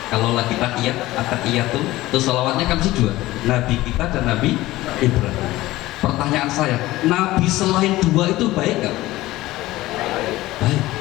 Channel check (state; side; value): quieter; right; 17.4 dB